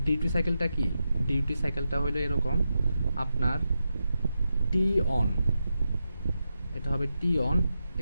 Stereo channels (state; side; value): inverted; both; correlation -0.88